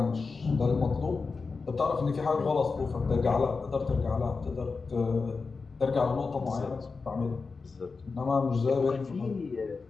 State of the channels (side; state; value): right; quieter; 4.5 dB